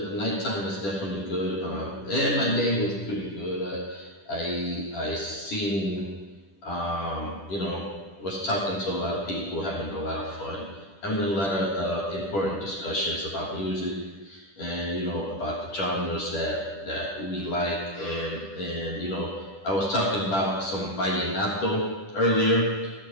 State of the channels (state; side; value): late; right; 10 ms